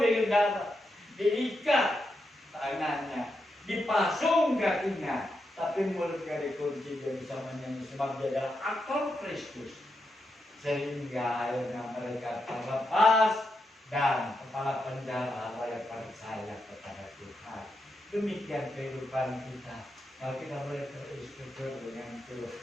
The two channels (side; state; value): both; normal; correlation 0.84